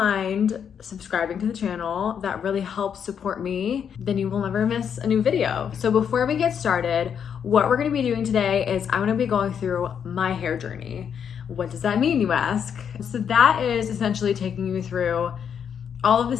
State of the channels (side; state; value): right; quieter; 7.8 dB